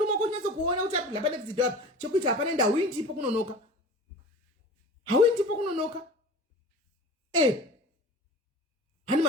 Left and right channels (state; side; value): normal; both; correlation 0.38